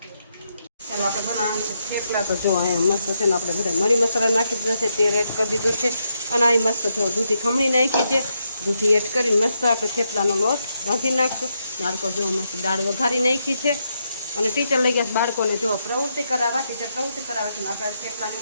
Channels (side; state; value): both; inverted; correlation -0.81